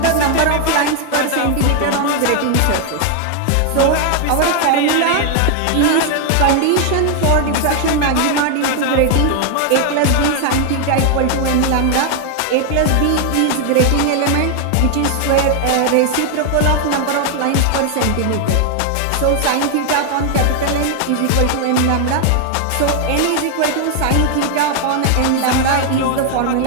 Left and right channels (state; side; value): different; both; correlation 0.00